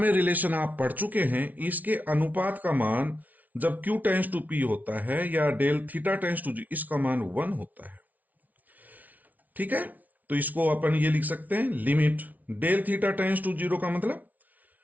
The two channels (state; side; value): late; left; 0.075 ms